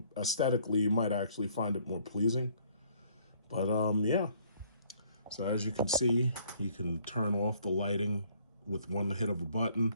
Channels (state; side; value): inverted; both; correlation -0.62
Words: aesthetically you might actually find it more pleasing. But yeah. So as you can see, you can turn off the lighting with one hit of a button.